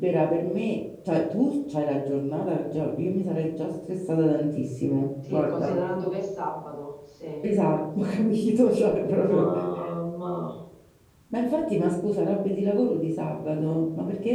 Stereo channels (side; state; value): both; identical; correlation 1.00